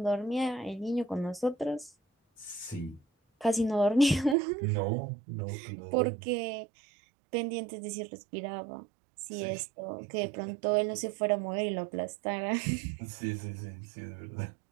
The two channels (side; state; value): left; drops out; at 4.4 s